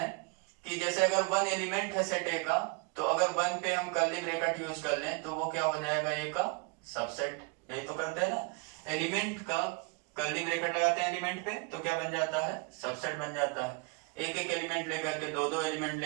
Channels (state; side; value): quieter; left; 30.6 dB